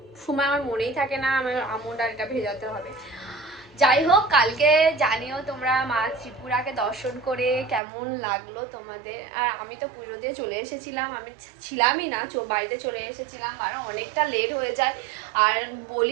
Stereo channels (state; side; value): drops out; left; at 7.8 s